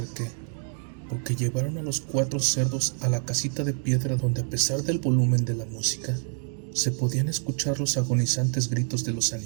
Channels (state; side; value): silent; left; 60 dB below the other